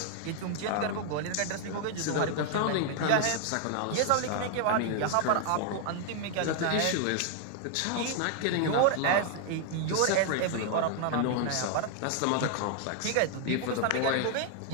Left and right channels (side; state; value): both; different; correlation 0.00